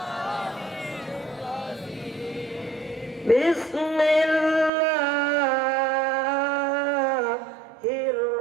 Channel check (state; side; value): drops out; left; at 4.7 s